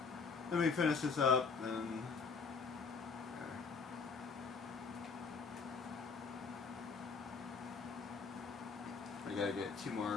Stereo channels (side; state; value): right; quieter; 5.1 dB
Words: let me finish this up and. I gotta get 2